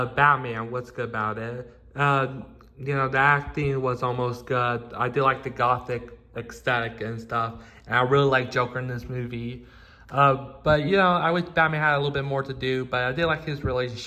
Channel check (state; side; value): identical; both; correlation 1.00